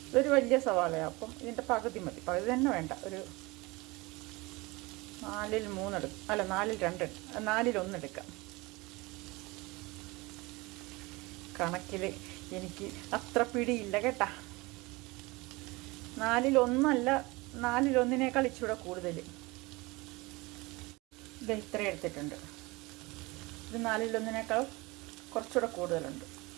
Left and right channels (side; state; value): left; quieter; 23.5 dB